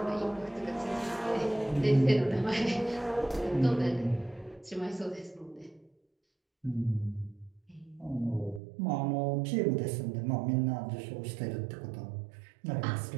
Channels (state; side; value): drops out; left; at 8.6 s